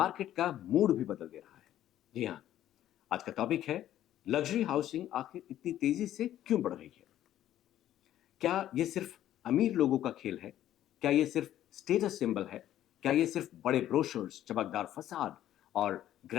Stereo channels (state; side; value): quieter; right; 12.3 dB